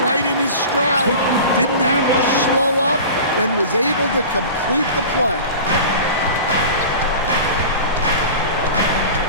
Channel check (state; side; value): inverted; both; correlation -0.35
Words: in his stride. Didn't have to slow up and was able to complete the play.